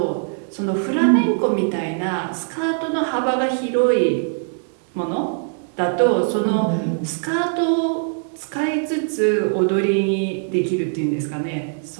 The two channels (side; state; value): left; silent; digital silence